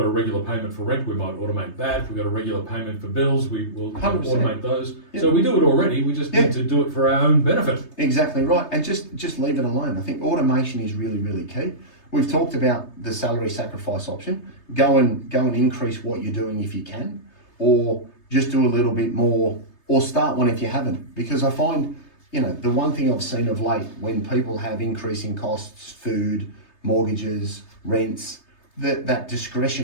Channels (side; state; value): right; late; 3.3 ms